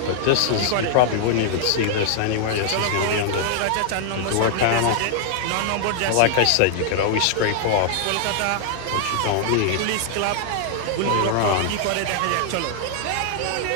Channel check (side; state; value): both; different; correlation 0.00